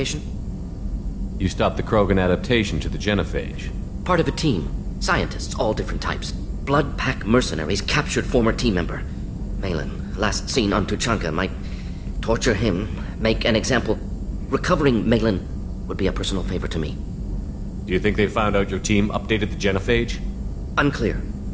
You stopped the Krogan adaptation to the genophage. Part of a team. Scientists, all different types. Blood Pack mercenaries captured former team member. Malin, last seen on Tuchanka, might torture him, make an example. Recovering Malin would be a personal favor to me. Do you think they found out your team updated the genophage? Unclear.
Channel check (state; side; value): identical; both; correlation 1.00